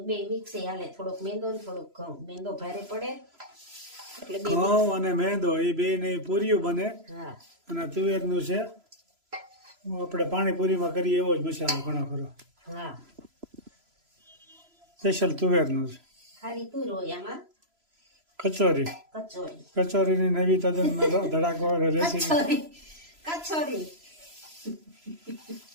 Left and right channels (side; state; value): left; late; 3.0 ms